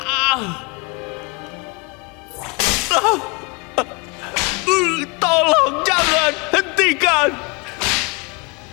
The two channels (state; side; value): quieter; right; 29.5 dB